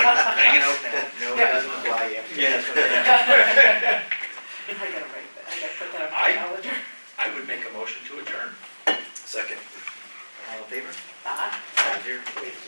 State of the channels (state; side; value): inverted; both; correlation -1.00